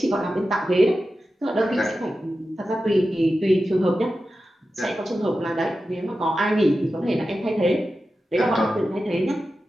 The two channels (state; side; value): normal; both; correlation 0.92